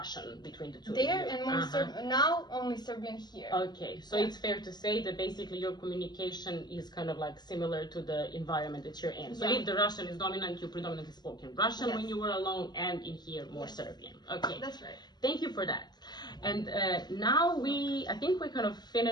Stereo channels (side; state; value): right; late; 0.20 ms